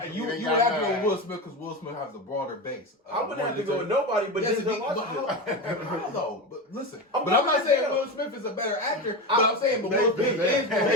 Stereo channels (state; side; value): normal; both; correlation 0.20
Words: is. You would have to go with Will Smith because Will Smith has a broader base. I wouldn't have to go with nobody but Denzel Washington. How though? But listen, I'm but I'm not going saying Denzel. Will Smith is a better actor. But I'm saying, but Will Smith is more